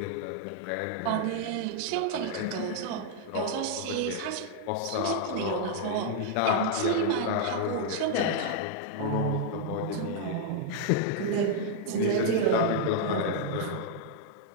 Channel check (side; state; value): both; different; correlation 0.00